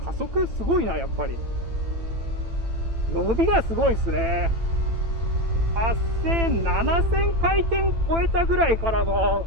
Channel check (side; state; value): left; late; 8.9 ms